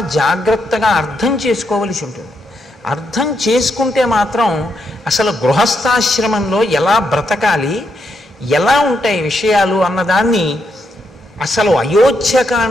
జాగ్రత్తగా అర్థం చేసుకోవలసి ఉంటుంది. అర్థం చేసుకుంటే మాత్రం అసలు గృహస్థాశ్రమంలో ఎలా బ్రతకాలి, ఎలా ఉంటాయి విషయాలు అన్నదాన్ని అసలు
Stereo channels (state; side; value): normal; both; correlation 0.80